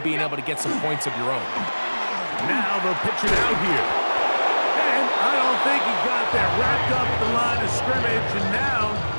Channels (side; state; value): both; inverted; correlation -1.00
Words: being able to get some points of your own. Now they'll pitch it out here. And I don't think he got that wrapped up at the line of scrimmage, and now